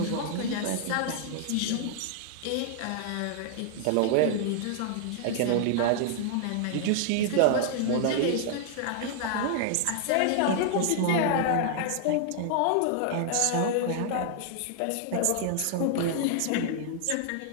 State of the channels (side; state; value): both; different; correlation -0.01